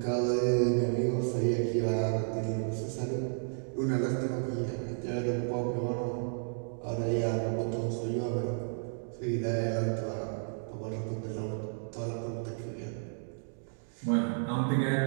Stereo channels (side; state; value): left; silent; digital silence